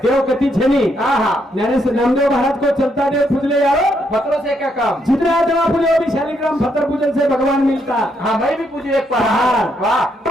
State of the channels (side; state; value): both; normal; correlation 0.76